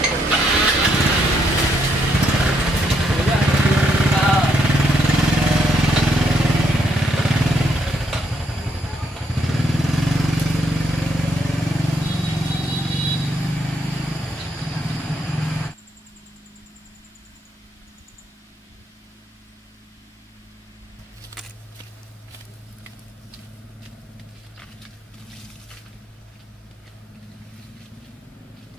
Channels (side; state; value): both; normal; correlation 0.74